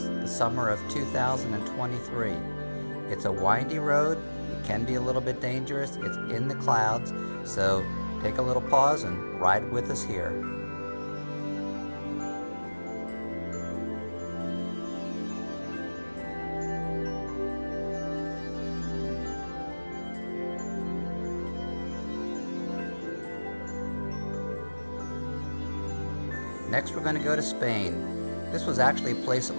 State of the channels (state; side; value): inverted; both; correlation -1.00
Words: the summer of 2023. It's a windy road, it can be a little bit dangerous, it's in the clouds, so take a little pause and ride with us here. Next, we're going to go to Spain. This was actually a place that